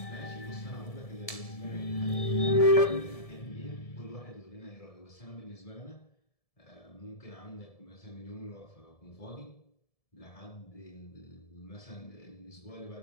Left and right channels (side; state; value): right; late; 1.7 ms